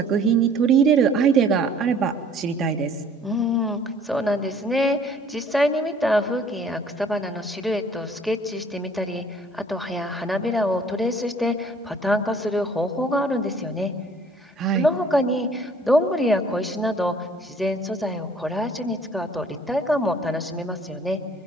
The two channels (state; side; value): normal; both; correlation 0.56